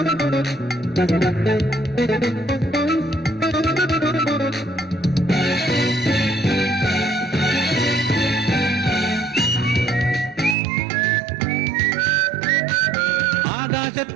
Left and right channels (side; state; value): left; drops out; at 10.6 s